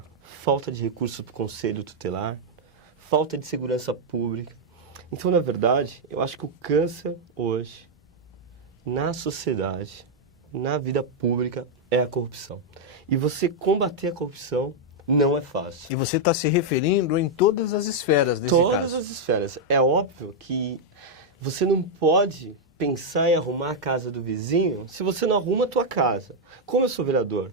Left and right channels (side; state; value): both; normal; correlation -0.02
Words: falta de recursos para o conselho tutelar, falta de segurança pública. Então, na verdade, eu acho que o câncer hoje, na sociedade, na vida pública, é a corrupção. E você combater a corrupção não é fácil. E você está se referindo em todas as esferas desse caso? Todas as esferas. É óbvio que você não pode pensar em arrumar a casa do vizinho se você não arruma a tua casa. Como eu sou vereador